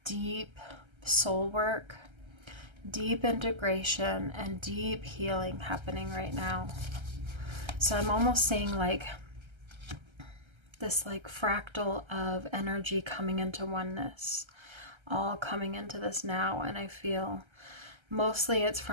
deep soul work, deep integration, and deep healing happening right now. So I'm almost seeing this fractal of energy coming into oneness, all coming into this now. And I feel mostly it's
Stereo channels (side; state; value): left; late; 1.3 ms